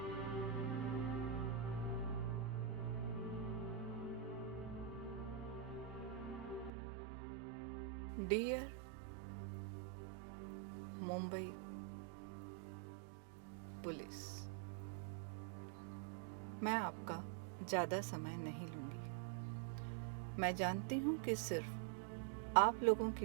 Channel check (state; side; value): drops out; left; at 6.7 s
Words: Dear Mumbai police, मैं आपका ज़्यादा समय नहीं लूँगी। मैं जानती हूँ कि सिर्फ आप लोगों